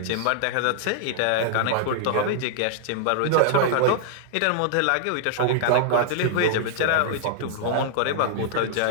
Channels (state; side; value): different; both; correlation -0.01